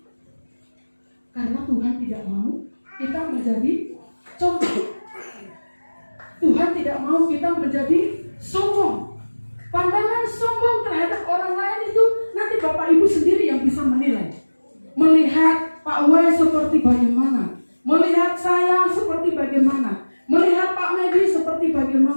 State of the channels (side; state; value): both; inverted; correlation -1.00